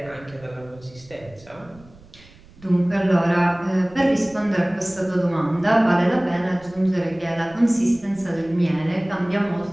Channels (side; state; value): right; noise; rumble, 24 dB below the sound